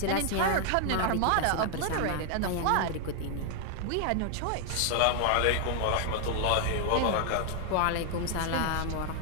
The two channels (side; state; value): both; different; correlation 0.00